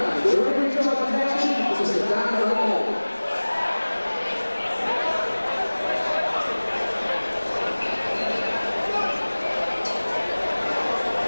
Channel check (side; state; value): both; inverted; correlation -1.00